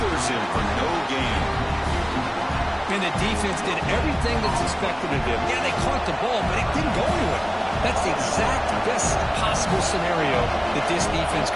him for no gain. And the defense did everything that's expected of them. Yeah, they caught the ball, but it didn't go anywhere. That's the exact best possible scenario that this defense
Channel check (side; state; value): both; identical; correlation 1.00